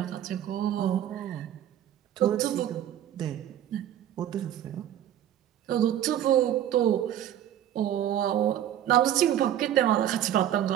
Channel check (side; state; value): left; quieter; 11.2 dB